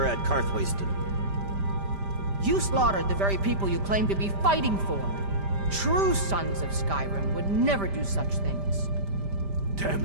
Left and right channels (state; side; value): late; left; 5.1 ms